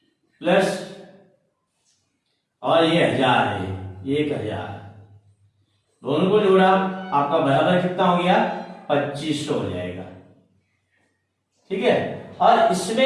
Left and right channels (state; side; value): identical; both; correlation 1.00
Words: प्लस और ये 1000 है, 1000, दोनों को जोड़ा आपका बराबर कितना हो गया? 2500 हो जाएगा, ठीक है। और